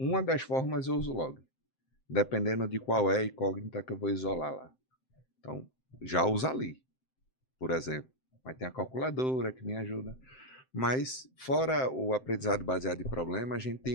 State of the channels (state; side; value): late; right; 7.7 ms